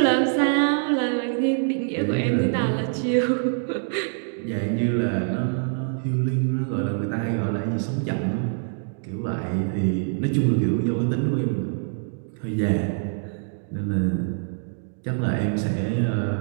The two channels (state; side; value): silent; left; digital silence